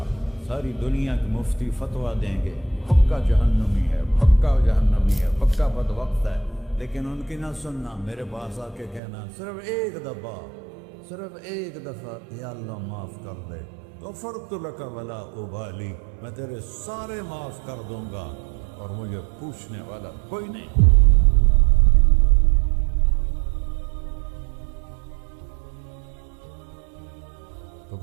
ساری دنیا کے مفتی فتویٰ دیں گے پکا جہنمی ہے، پکا جہنمی ہے، پکا بدبخت ہے، لیکن ان کی نہ سننا، میرے پاس آ کے کہنا صرف ایک دفعہ یا اللہ معاف کر دے، غفرت لک ولا ابالی، میں تیرے سارے معاف کر دوں گا اور مجھے پوچھنے والا کوئی نہیں۔ تو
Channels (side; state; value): left; drops out; at 9.0 s